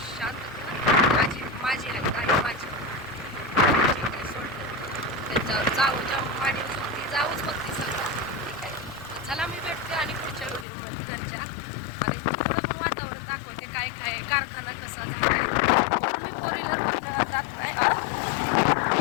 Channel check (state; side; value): drops out; right; at 10.7 s